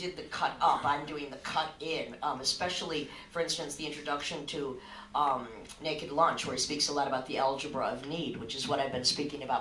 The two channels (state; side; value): identical; both; correlation 1.00